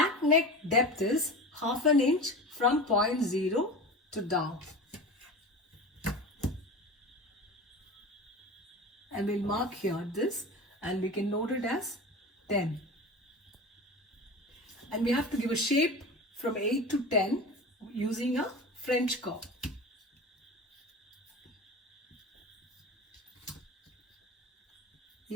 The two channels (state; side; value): normal; both; correlation 0.31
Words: neck depth is half an inch from point 0 to down. And we'll mark here this, and we can note it as 10. And we have to give a shape from 8 to 10 using a French curve.